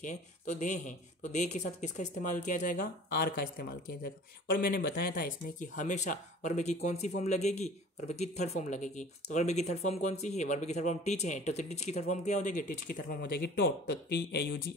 तो दे हैं, तो दे के साथ किसका इस्तेमाल किया जाएगा, आर का इस्तेमाल किया जाएगा। और मैंने बताया था इसमें कि हमेशा वर्ब की कौन सी फॉर्म लगेगी, वर्ब की थर्ड फॉर्म लगेगी। तो वर्ब की थर्ड फॉर्म कौन सी है, वर्ब की थर्ड फॉर्म टीच है, तो टीच की थर्ड फॉर्म क्या हो जाएगी, टीच की थर्ड फॉर्म हो जाएगी टॉट, तो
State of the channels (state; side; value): normal; both; correlation 0.45